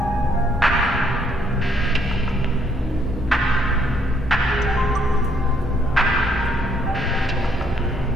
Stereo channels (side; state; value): both; normal; correlation 0.69